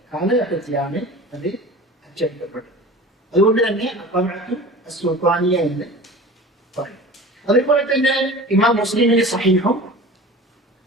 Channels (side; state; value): both; normal; correlation 0.38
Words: കാലഘട്ടത്തിലാണ് അത് അച്ചടിക്കപ്പെട്ടത്. അതുകൊണ്ട് തന്നെ അത്തബഅത്തു സുൽത്താനിയ എന്ന് പറയും. അതേപോലെ തന്നെ ഇമാം മുസ്ലിമിന്റെ സഹീഹും